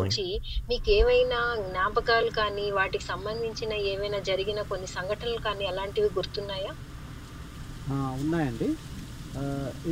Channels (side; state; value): both; identical; correlation 1.00